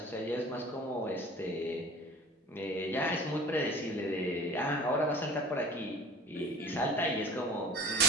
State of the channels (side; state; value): both; normal; correlation 0.41